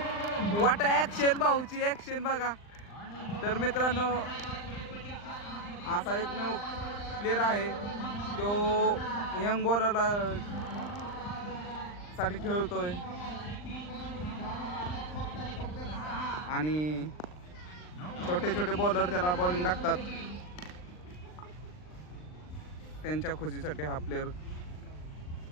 वाट ऍक्शन, भाऊची ऍक्शन बघा. तर मित्रांनो असा एकमेव प्लेअर आहे तो यंग बॉलरला साठी खेळतोय आणि छोटे छोटे बॉलर त्याला बॉलिंग टाकतात. त्यांच्या खुशीसाठी हा प्लेअर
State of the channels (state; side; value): late; right; 39 ms